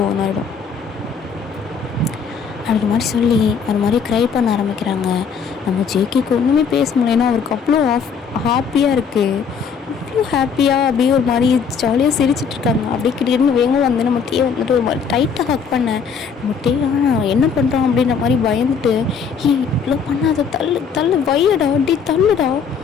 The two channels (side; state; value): right; quieter; 6.2 dB